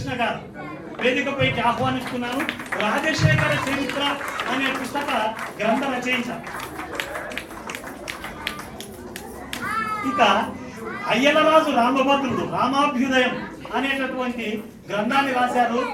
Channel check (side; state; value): both; identical; correlation 1.00